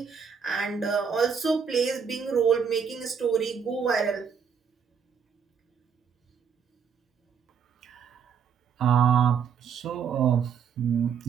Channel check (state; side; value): quieter; left; 6.8 dB